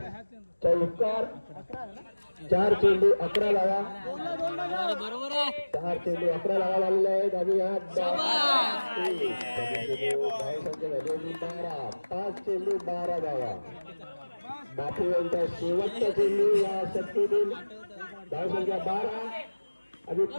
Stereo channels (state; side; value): inverted; both; correlation -1.00